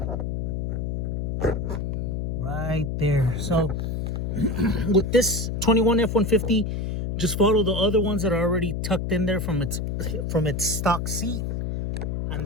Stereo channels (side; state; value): left; noise; hum, 2 dB below the sound